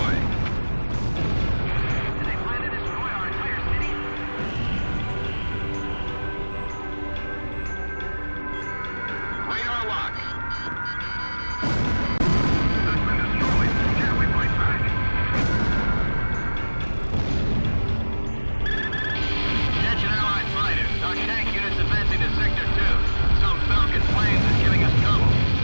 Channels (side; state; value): both; inverted; correlation -1.00